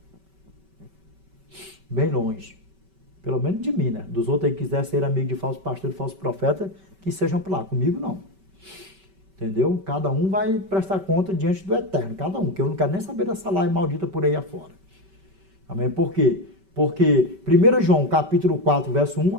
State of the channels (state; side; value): late; left; 5.2 ms